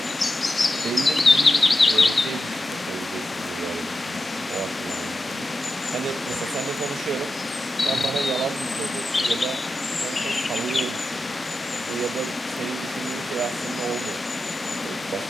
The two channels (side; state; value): both; normal; correlation 0.90